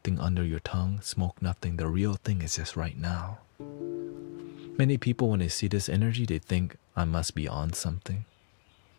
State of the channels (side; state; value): right; silent; digital silence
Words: under your tongue, smoke nothing. The real thing is just right now. Many people, when they see this energy, they think I must be on something.